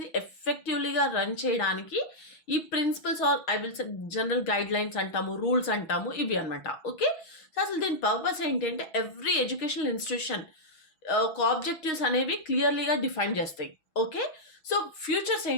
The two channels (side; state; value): right; late; 6.4 ms